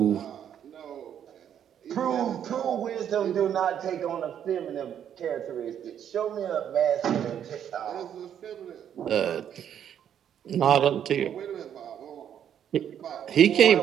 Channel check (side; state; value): left; quieter; 9.4 dB